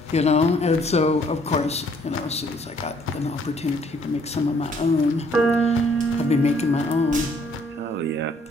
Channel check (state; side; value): normal; both; correlation 0.64